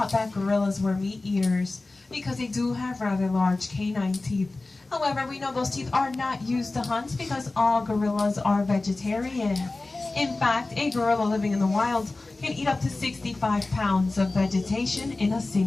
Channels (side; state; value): right; quieter; 3.2 dB